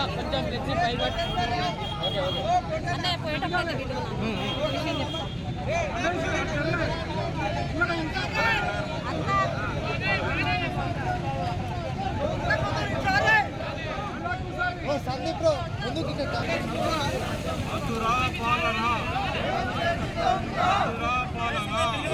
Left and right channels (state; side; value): identical; both; correlation 1.00